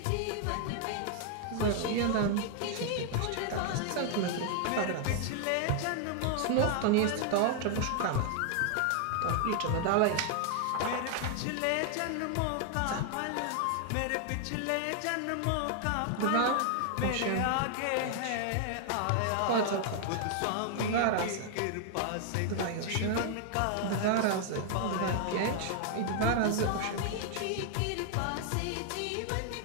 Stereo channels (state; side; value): different; both; correlation 0.00